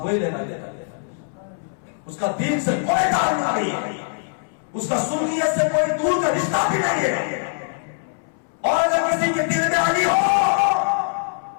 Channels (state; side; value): silent; right; 64 dB below the other